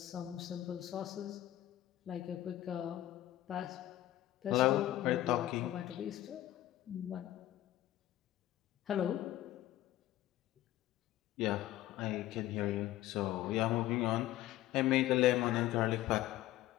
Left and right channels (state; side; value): quieter; right; 14.4 dB